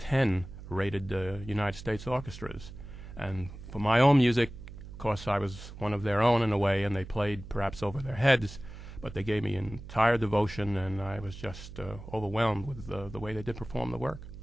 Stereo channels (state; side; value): noise; right; hum, 13 dB below the sound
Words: rated United States orchestras. And for my own music, of course, I was one of their own in a way, and they played perhaps over their heads, but they gave me entire devotion, and I was just overwhelmed with the way they did perform the work.